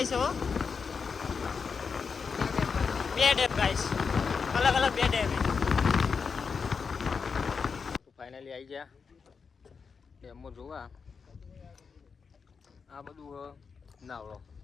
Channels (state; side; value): quieter; right; 5.5 dB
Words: છે હો બે ડેમ ગાઈસ અલગ અલગ બે ડેમ ફાઇનલી આવી ગયા ડેમમાં જોવા આ બધું નાવડો